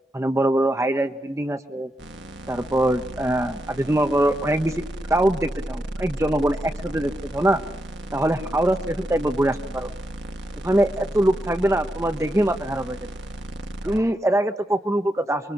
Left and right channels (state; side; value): normal; both; correlation 0.84